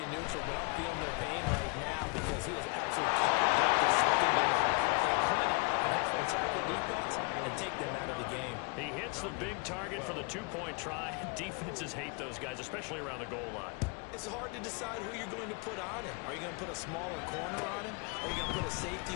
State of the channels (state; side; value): quieter; right; 31.7 dB